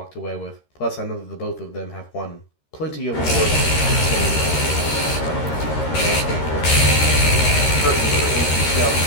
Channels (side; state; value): right; late; 13 ms